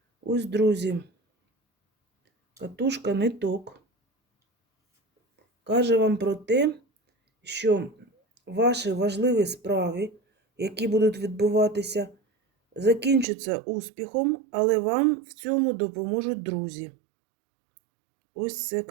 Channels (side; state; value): left; drops out; at 13.2 s